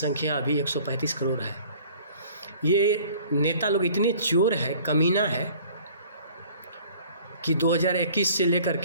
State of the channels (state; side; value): inverted; both; correlation -0.51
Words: अभी 135 करोड़ है। ये नेता लोग इतने चोर है, कमीना है कि 2021 से लेकर